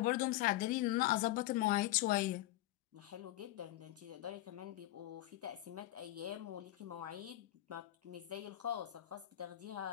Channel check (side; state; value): right; quieter; 15.7 dB